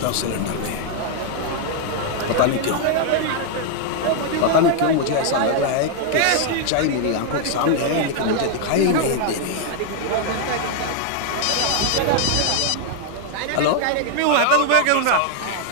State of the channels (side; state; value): both; different; correlation 0.00